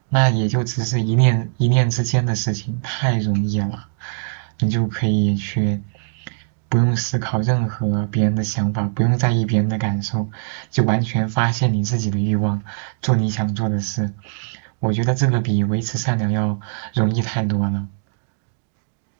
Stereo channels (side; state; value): left; silent; digital silence